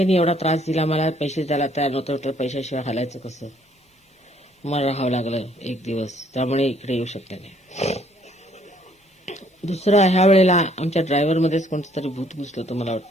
एवढा त्रास दिला, मला पैसे द्यायला तयार नव्हतं, तर पैशाशिवाय हालायचं कसं? मला राहावं लागलं 1 दिवस, त्यामुळे इकडे येऊ शकले नाही. दुसरं, ह्या वेळेला आमच्या ड्रायव्हरमध्येच कोणतं तरी भूत घुसलं होतं मला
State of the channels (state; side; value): normal; both; correlation 0.64